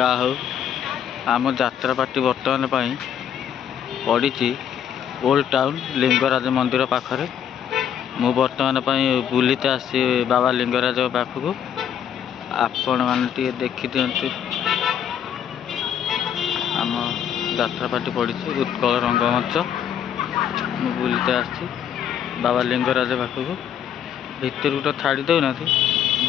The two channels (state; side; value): quieter; right; 9.1 dB